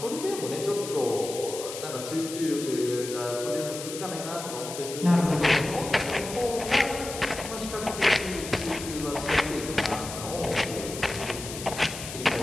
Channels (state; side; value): noise; left; hiss, 9 dB below the sound